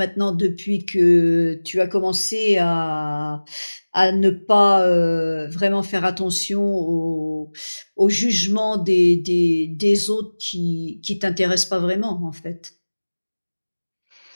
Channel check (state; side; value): inverted; both; correlation -1.00